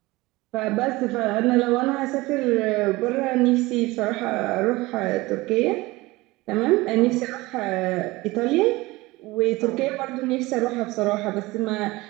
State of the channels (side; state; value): left; quieter; 20.9 dB